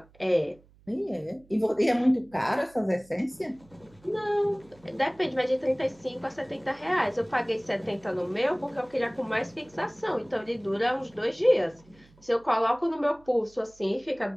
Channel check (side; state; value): right; noise; hum, 28 dB below the sound